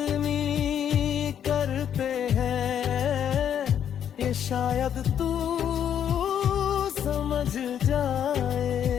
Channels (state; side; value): quieter; right; 9.2 dB